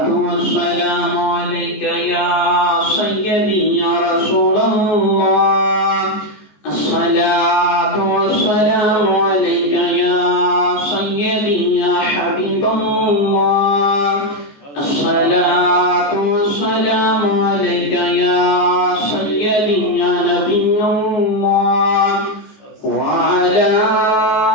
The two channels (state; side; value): late; right; 14 ms